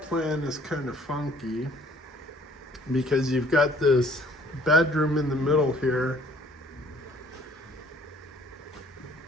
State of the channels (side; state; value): both; normal; correlation 0.57